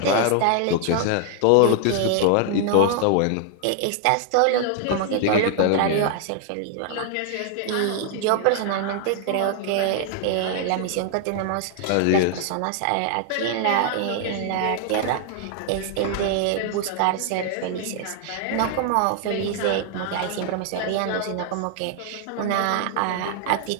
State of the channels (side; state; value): both; different; correlation 0.00